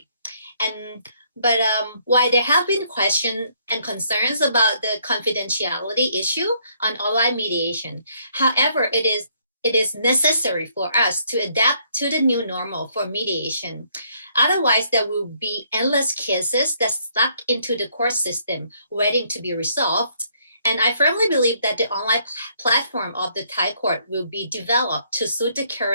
But while there have been questions and concerns about the confidentiality issue on online mediation, however, it is necessary for us to adapt to the new normal for mediation. Otherwise, there will be endless cases that stuck into the court system waiting to be resolved. And I firmly believe that the online platform of the Thai court will be developed to suit the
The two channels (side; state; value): both; inverted; correlation -0.68